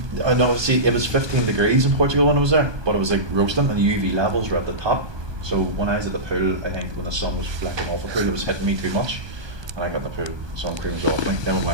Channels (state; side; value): late; left; 1.2 ms